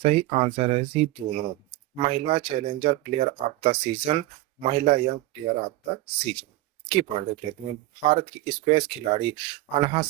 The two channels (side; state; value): left; quieter; 17.2 dB